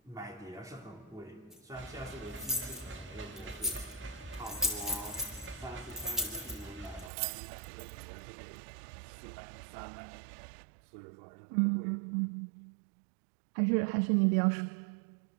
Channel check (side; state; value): left; drops out; at 7.1 s